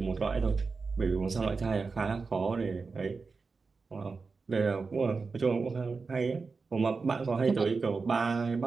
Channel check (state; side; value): quieter; left; 4.5 dB